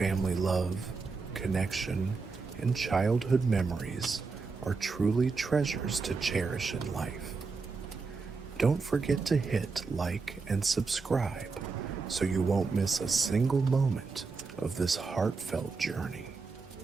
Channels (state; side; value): quieter; left; 4.4 dB